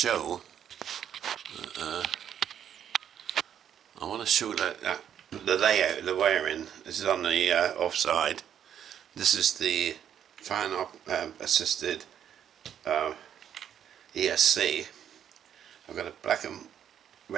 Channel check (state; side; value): quieter; left; 9.4 dB